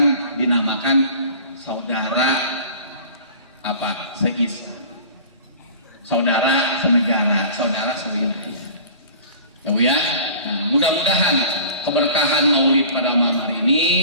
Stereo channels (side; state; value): both; inverted; correlation -0.43